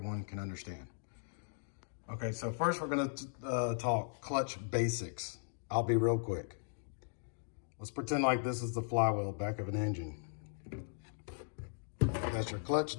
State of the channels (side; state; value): right; silent; digital silence